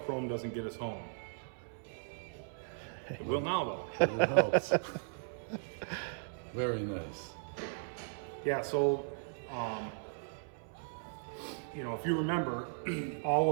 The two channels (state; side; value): silent; left; 53 dB below the other